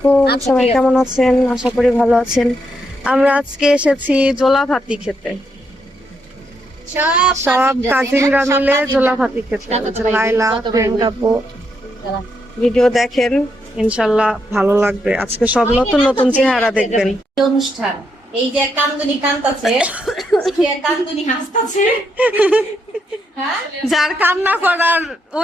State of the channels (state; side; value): normal; both; correlation 0.79